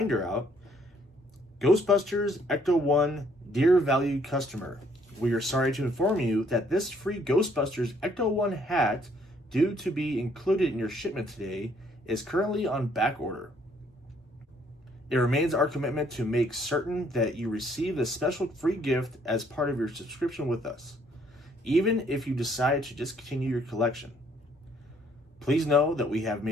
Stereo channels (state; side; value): normal; both; correlation 0.65